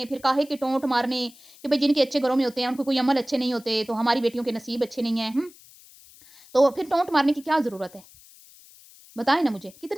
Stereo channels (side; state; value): left; noise; hiss, 24 dB below the sound